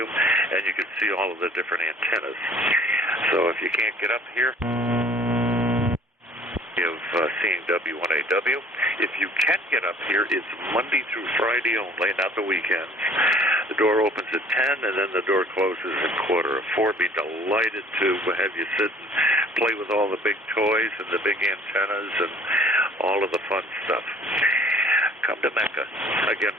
and you can see all of the different antennas. So if you can't get up here, of seeing W1AW. If you can get up here, it's Monday through Friday only, not the weekends. The door opens at 10, and then the door closes at 3:45. Be delighted to have you sit and play with all the big toys and the big antennas and all of the fun stuff. Come to Mecca. Again,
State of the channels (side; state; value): both; normal; correlation 0.52